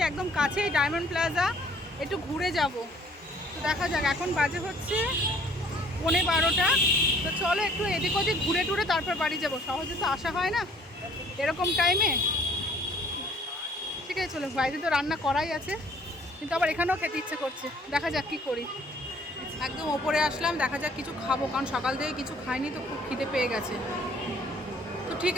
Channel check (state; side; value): normal; both; correlation 0.57